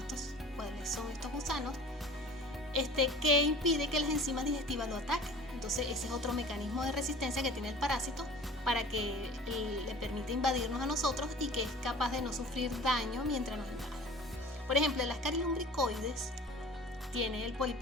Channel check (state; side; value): normal; both; correlation 0.43